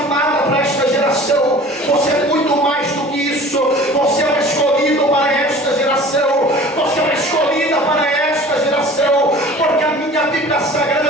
para esta geração, você é muito mais do que isso. Você é um escolhido para esta geração, você é uma escolhida para esta geração, porque a minha Bíblia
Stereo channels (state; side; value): normal; both; correlation 0.44